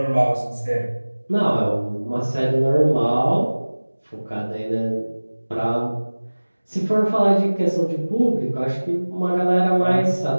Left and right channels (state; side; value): inverted; both; correlation -1.00